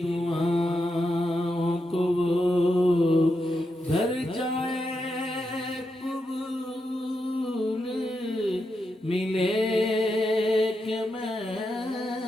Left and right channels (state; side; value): normal; both; correlation 0.85